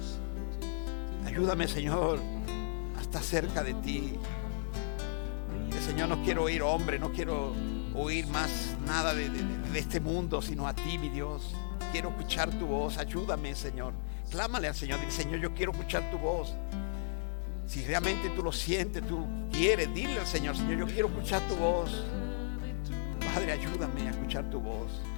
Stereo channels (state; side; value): silent; right; digital silence